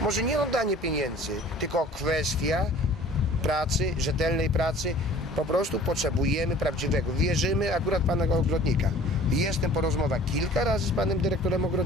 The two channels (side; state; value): both; normal; correlation 0.48